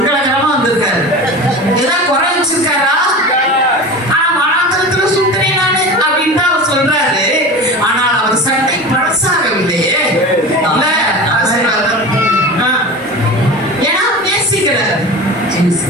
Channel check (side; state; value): both; normal; correlation 0.32